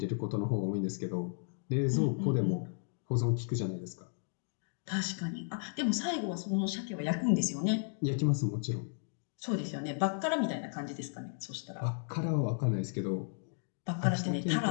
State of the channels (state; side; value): silent; right; 55 dB below the other